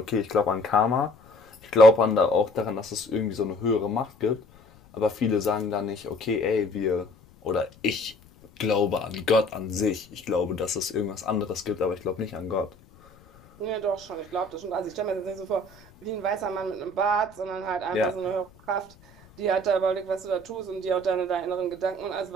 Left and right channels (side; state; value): left; noise; rumble, 26 dB below the sound